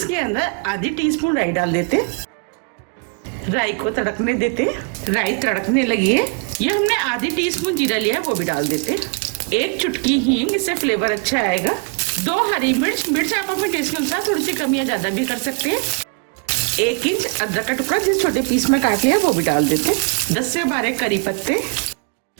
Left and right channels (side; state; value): left; quieter; 36.4 dB